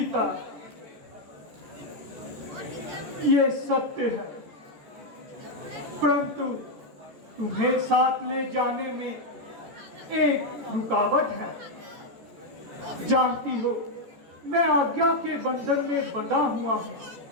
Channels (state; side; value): late; left; 14 ms